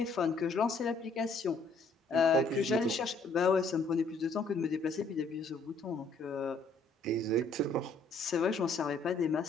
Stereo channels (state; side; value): quieter; right; 3.3 dB